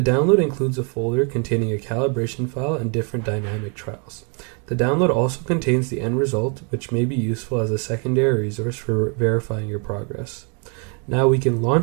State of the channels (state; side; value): quieter; left; 37.0 dB